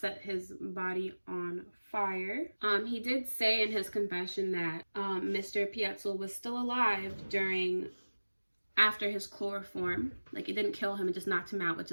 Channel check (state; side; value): inverted; both; correlation -1.00